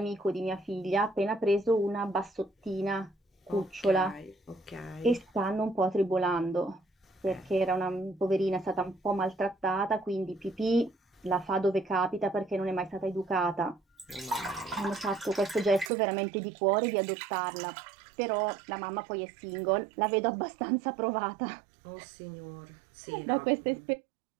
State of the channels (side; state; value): left; drops out; at 15.9 s